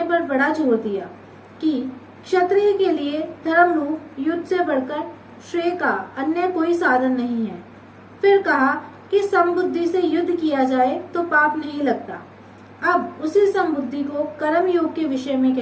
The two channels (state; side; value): identical; both; correlation 1.00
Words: पर बड़ा जोर दिया कि क्षत्रिय के लिए धर्म रूप युद्ध से बढ़कर श्रेय का अन्य कोई साधन नहीं है। फिर कहा कि समबुद्धि से युद्ध किया जाए तो पाप नहीं लगता। अब उसी समबुद्धि को कर्म योग के विषय में